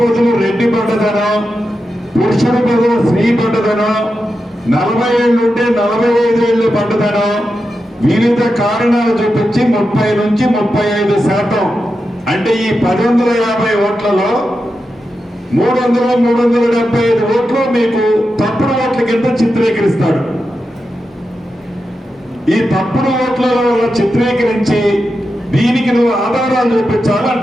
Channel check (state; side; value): normal; both; correlation 0.89